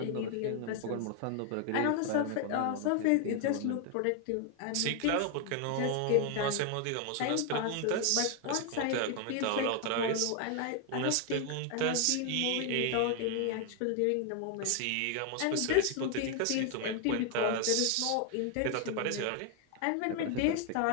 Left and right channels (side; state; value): both; different; correlation 0.00